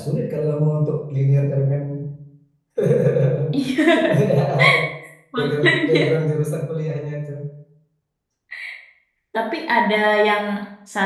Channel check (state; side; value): identical; both; correlation 1.00